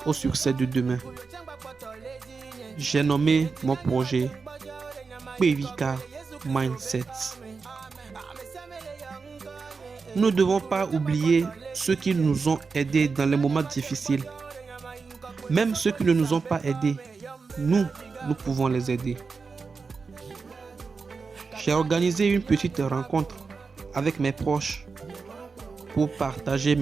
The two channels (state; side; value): quieter; left; 4.8 dB